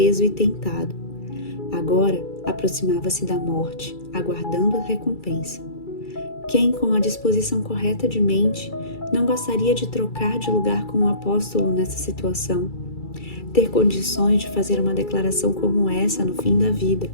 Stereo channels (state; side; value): late; right; 2.3 ms